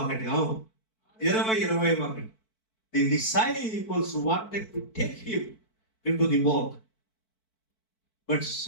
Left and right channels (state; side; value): late; right; 4.5 ms